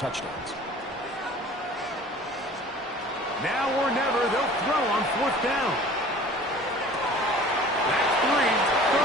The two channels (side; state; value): both; normal; correlation 0.46